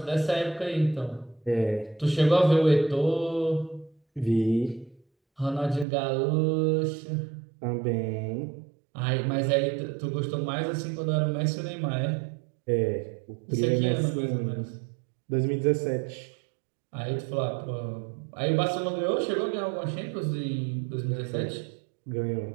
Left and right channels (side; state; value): left; drops out; at 5.9 s